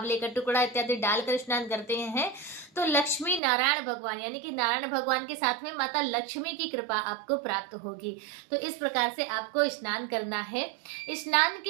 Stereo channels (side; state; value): left; drops out; at 3.4 s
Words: का टुकड़ा इत्यादि डालकर स्नान करते हैं, तो लक्ष्मी नारायण भगवान यानी कि नारायण भगवान के साथ में माता लक्ष्मी की कृपा आपको प्राप्त होगी। तो इस प्रकार से आपको स्नान करना है। स्नान